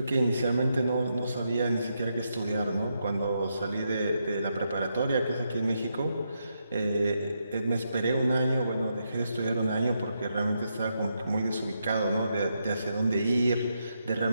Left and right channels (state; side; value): inverted; both; correlation -0.82